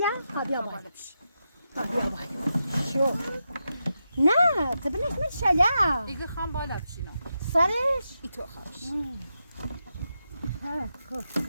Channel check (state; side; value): inverted; both; correlation -0.87